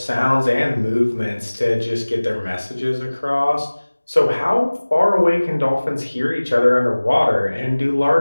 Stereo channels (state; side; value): inverted; both; correlation -1.00